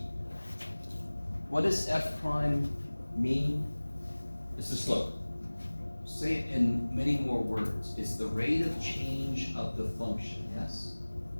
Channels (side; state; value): both; inverted; correlation -1.00